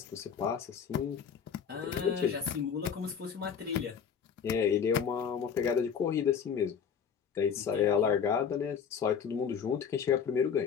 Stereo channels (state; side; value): quieter; right; 7.1 dB